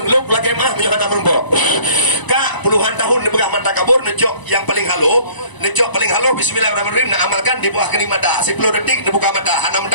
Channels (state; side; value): late; right; 1.0 ms